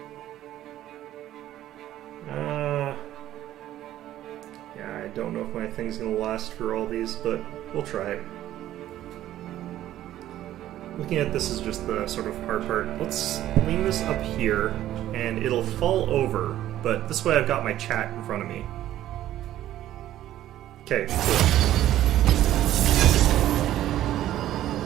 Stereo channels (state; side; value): quieter; left; 13.1 dB